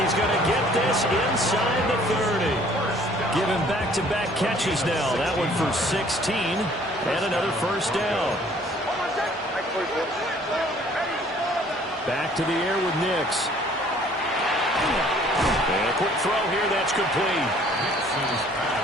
he's going to get this inside the 30. Giving back-to-back catches now. That one for 16 and another first down. Back to the air with Nix. And a quick throw here. That's complete.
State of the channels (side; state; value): both; normal; correlation 0.57